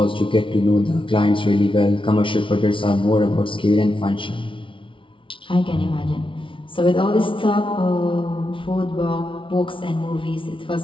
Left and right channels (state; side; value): late; right; 0.25 ms